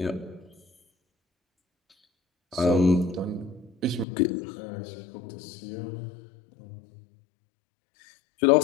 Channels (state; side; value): drops out; right; at 4.0 s